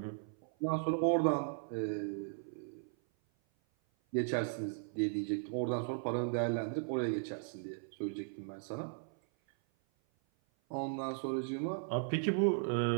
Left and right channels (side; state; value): left; silent; 53 dB below the other